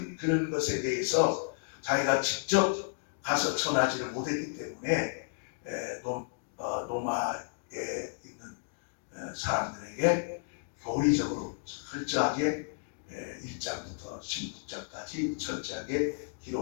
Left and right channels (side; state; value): right; silent; digital silence